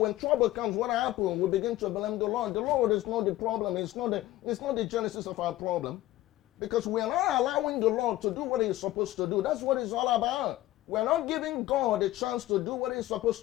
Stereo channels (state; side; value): quieter; right; 15.9 dB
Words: trouble comes, what happens? We begin to blame the Lord. The Lord is not the problem. It's not the genesis of our problem, because we are not allowing the Lord to do what He's supposed to do. That's what it's all about. We're not giving God a chance to do what He's supposed